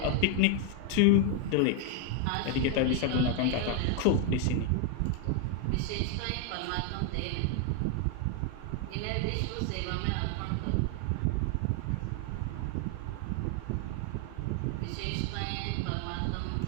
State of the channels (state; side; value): different; both; correlation 0.01